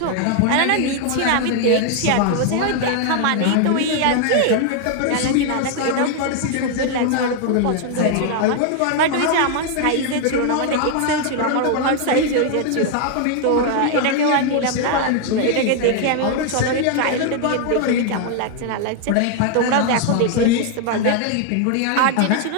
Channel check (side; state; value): both; different; correlation 0.00